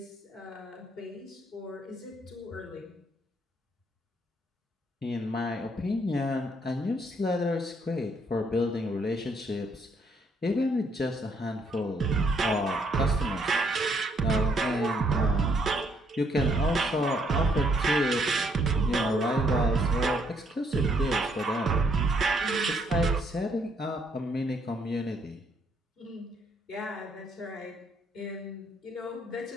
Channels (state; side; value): normal; both; correlation 0.70